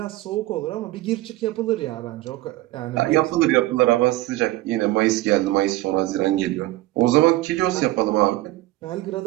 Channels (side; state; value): left; quieter; 17.6 dB